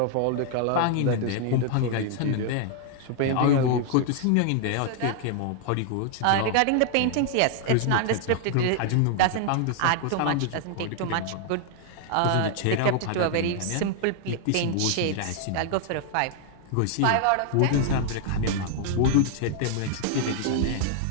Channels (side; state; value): both; different; correlation 0.00